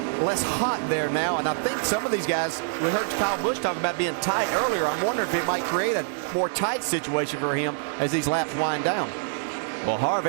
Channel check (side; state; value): left; silent; digital silence